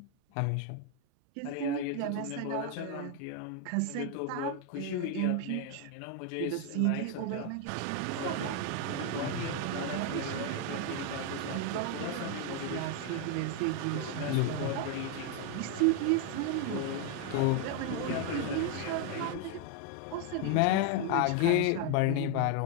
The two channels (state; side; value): different; both; correlation 0.01